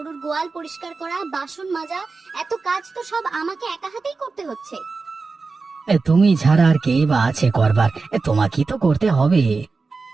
গোয়াল পরিষ্কার করা, বাসন মাজা, এত কাজ তো সব আমাকে একা হাতেই করতে হচ্ছে। তুমি ছাড়া আর কে বা আছে করবার, তোমাকেই তো করতে হবে।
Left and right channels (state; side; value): quieter; left; 4.2 dB